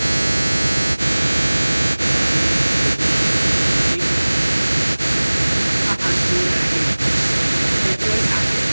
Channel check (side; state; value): both; inverted; correlation -1.00